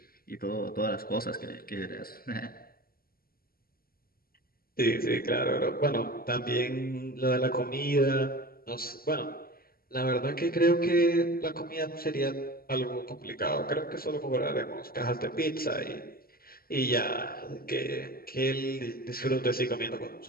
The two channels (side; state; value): right; late; 0.43 ms